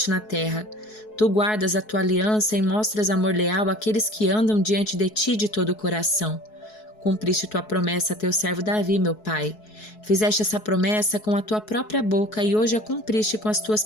na terra. Tu guardas a tua aliança e mostras amor leal àqueles que andam diante de ti de todo o coração. Cumpriste tua promessa a teu servo Davi, meu pai. Fizeste essa promessa com a tua própria boca e hoje a cumpriste com as tuas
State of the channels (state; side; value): late; right; 4.7 ms